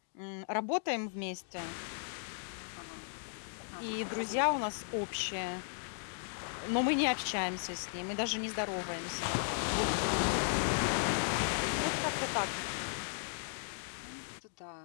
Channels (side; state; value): right; silent; digital silence